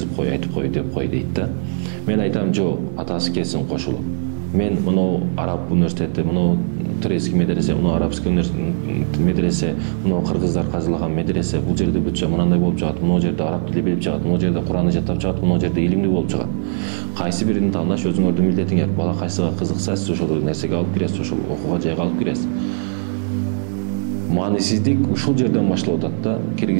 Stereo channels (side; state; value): left; silent; 66 dB below the other